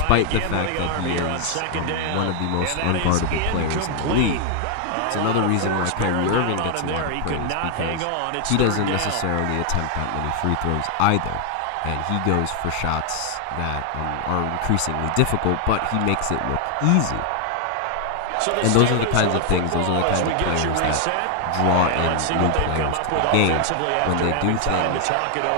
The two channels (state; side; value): different; both; correlation 0.00